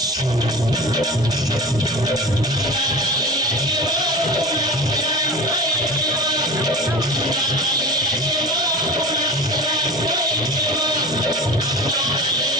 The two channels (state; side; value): normal; both; correlation 0.33